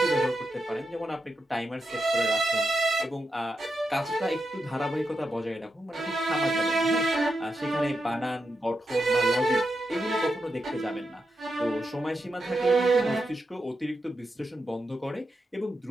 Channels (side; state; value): both; normal; correlation 0.86